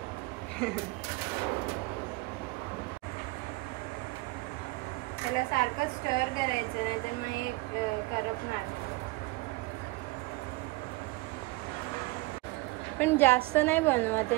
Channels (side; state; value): left; quieter; 22.7 dB